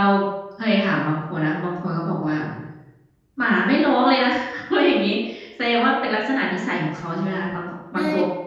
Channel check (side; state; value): both; identical; correlation 1.00